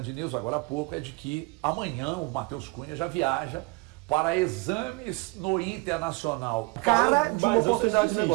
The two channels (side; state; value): left; quieter; 26.1 dB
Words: News, agora há pouco, é de que amanhã o Matheus Cunha já viaja para exames no Internacional. Cara de uma oportunidade de